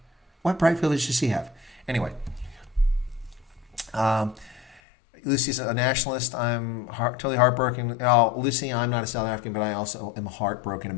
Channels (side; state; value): right; drops out; at 4.8 s